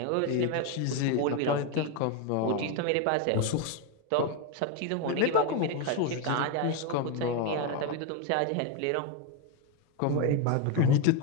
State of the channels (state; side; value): different; both; correlation 0.02